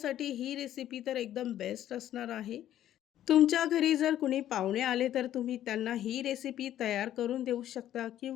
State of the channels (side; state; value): right; quieter; 12.0 dB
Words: ही रेसिपी तर एकदम बेस्ट असणार आहे. तुमच्या घरी जर कुणी पाहुणे आले तर तुम्ही त्यांना ही रेसिपी तयार करून देऊ शकता